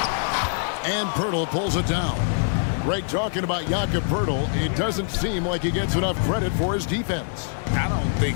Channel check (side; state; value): right; silent; 63 dB below the other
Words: And Poeltl pulls it down. Greg, talking about Jakob Poeltl, it doesn't seem like he gets enough credit for his defense. I don't